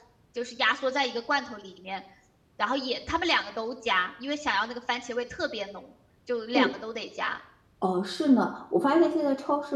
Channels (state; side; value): identical; both; correlation 1.00